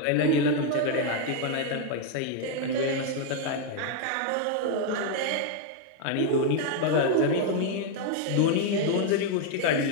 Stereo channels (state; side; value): different; both; correlation 0.00